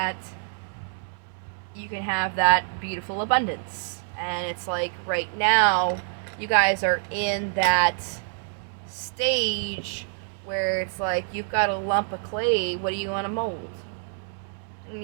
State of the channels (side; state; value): left; silent; digital silence